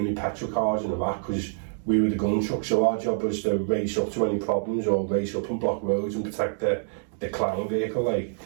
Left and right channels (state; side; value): silent; left; digital silence